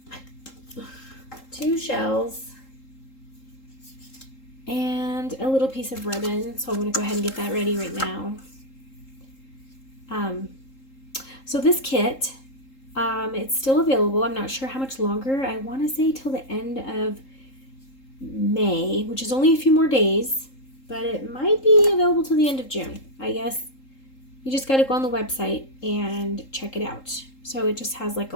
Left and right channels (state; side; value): late; right; 3.8 ms